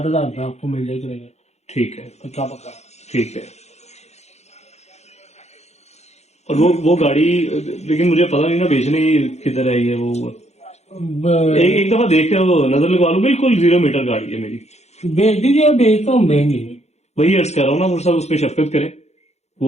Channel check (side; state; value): right; late; 0.32 ms